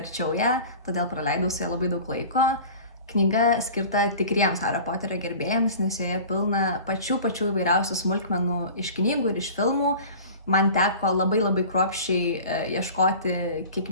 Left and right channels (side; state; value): both; inverted; correlation -0.40